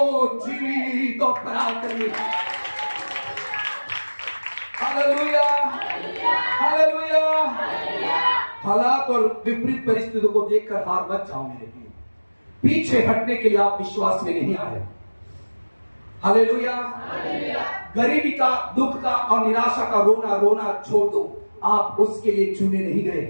जीवित और पराक्रमी। Hallelujah, hallelujah. हालात और विपरीत परिस्थितियों को देखकर हार मत जाओ मेरे लिए। पीछे हटने के लिए आप विश्वास में नहीं आए। हालेलुया। गरीबी का, दुख का और निराशा का रोना रोना छोड़ दो। आप उसके लिए चुने नहीं गए।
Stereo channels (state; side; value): inverted; both; correlation -1.00